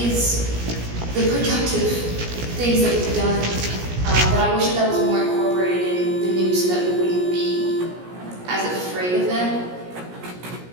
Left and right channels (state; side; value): late; left; 17 ms